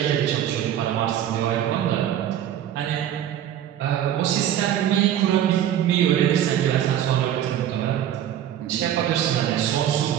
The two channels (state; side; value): quieter; left; 10.8 dB